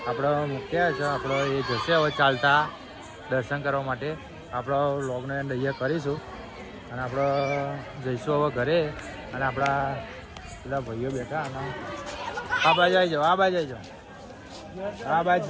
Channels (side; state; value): both; identical; correlation 1.00